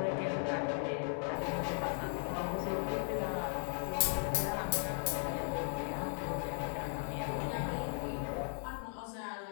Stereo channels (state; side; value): silent; right; 53 dB below the other